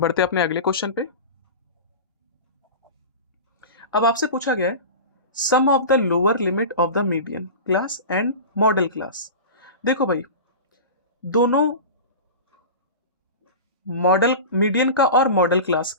अपने अगले क्वेश्चन पे। अब आपसे पूछा गया है sum of the lower limit of the median class and modal class. देखो भाई, दोनों मॉडल, मीडियन का और मॉडल क्लास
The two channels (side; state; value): both; inverted; correlation -0.30